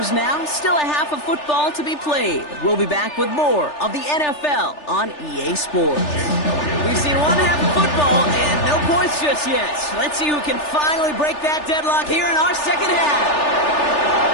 now. Still a half of football to be played. We'll be back with more of the NFL on EA Sports. We've seen one half of football and no points just yet. Let's see who can finally break that deadlock here in our second half.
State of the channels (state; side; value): late; right; 3.4 ms